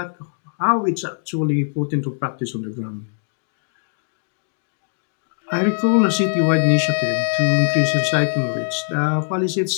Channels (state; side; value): silent; right; digital silence